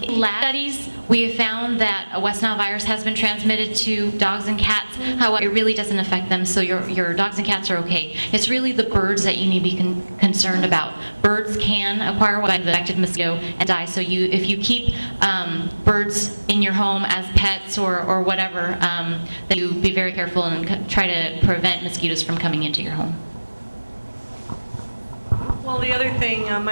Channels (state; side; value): inverted; both; correlation -1.00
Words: in lab studies, we have found that West Nile virus has been transmitted to dogs and cats. However, it really doesn't affect them, so your dogs and cats are okay. It's really the birds that you need to be concerned about. Birds can acquire the infected mosquito and die, so if you keep birds in your home as pets or whatever, then you be very careful and try to prevent mosquitoes from coming into your home. Well, the other thing,